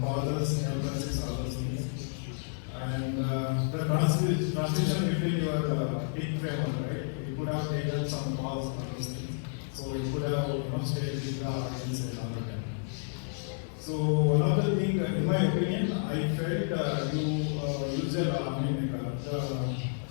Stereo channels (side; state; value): right; silent; digital silence